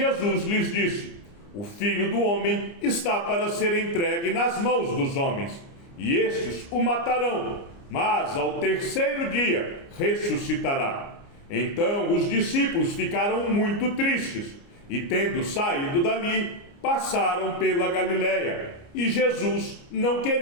lhes disse: o Filho do Homem está para ser entregue nas mãos dos homens, e estes o matarão, mas ao terceiro dia ressuscitará. Então os discípulos ficaram muito tristes, e tendo saído dali, passaram pela Galiléia, e Jesus não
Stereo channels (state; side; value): late; right; 29 ms